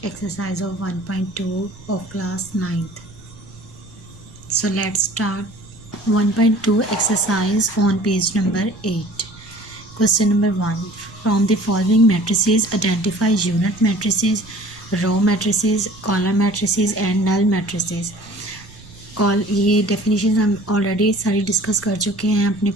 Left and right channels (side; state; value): right; noise; rumble, 21 dB below the sound